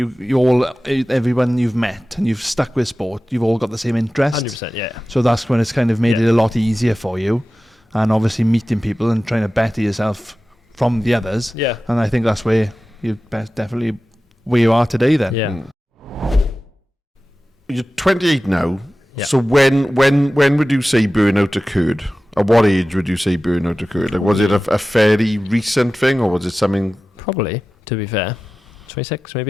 you've met and you've stuck with sport, you've all got the same interest. 100%, yeah. So that's when it's kind of made Yeah. it a lot easier for you. And obviously meeting people and trying to better yourself from the others. Yeah. And I think that's where you're definitely where you are today then. Yeah. You're 28 now. Yeah. So when would you say burnout occurred? At what age would you say burnout occurred? Like, was it a fairly recent thing, or was it something? Probably, to be fair. 26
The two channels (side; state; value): both; normal; correlation 0.95